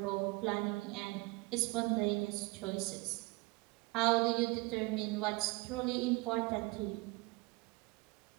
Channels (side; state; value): left; quieter; 24.5 dB